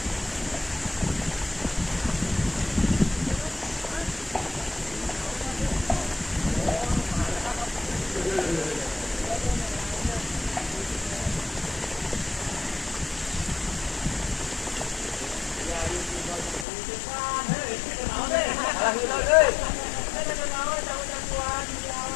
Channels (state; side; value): drops out; right; at 16.7 s